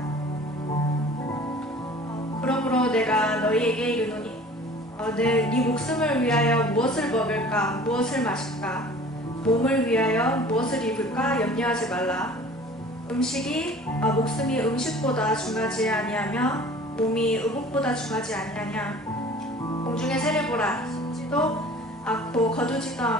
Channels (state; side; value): normal; both; correlation 0.46